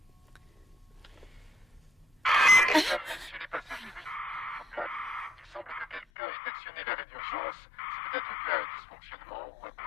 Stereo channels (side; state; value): right; drops out; at 6.1 s